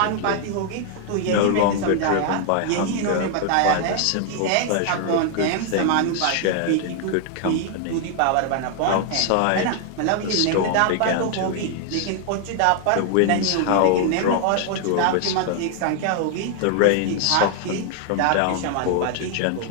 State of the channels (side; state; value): both; different; correlation 0.00